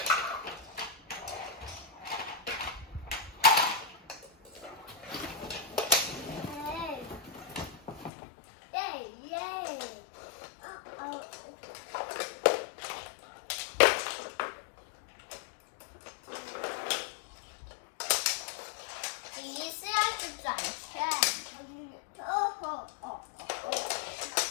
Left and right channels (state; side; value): drops out; right; at 8.1 s